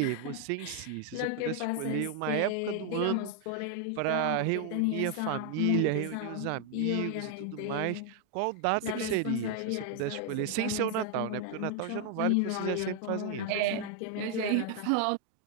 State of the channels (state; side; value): different; both; correlation 0.00